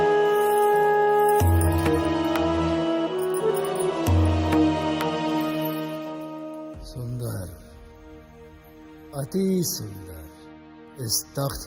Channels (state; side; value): identical; both; correlation 1.00